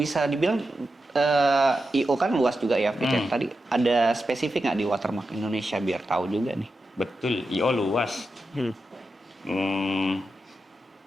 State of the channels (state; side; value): normal; both; correlation 0.89